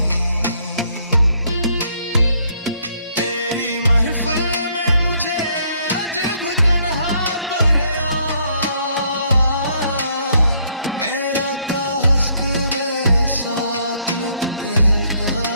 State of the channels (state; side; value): inverted; both; correlation -0.68